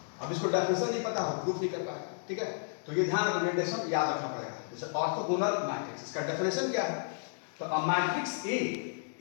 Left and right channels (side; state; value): right; silent; digital silence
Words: अब इसको डेफिनेशन नहीं पता हो, प्रूफ नहीं कर पाएगा। ठीक है, तो ये ध्यान रखो, डेफिनेशन याद रखना पड़ेगा। जैसे ऑर्थोगोनल मैट्रिक्स, इसका डेफिनेशन क्या है, तो a matrix A